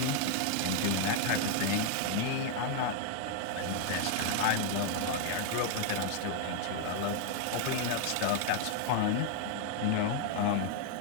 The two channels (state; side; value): different; both; correlation 0.00